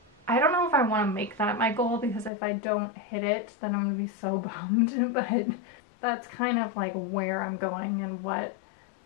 I don't know if I want to make that my goal, because if I don't hit it, then I'm going to be so bummed. But that's kind of like where I'm going and what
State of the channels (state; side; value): drops out; right; at 2.3 s